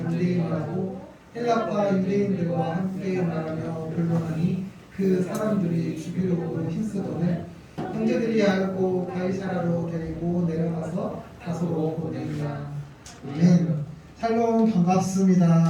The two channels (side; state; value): both; identical; correlation 1.00